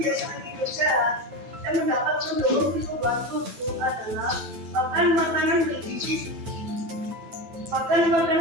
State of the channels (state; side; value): late; left; 9.1 ms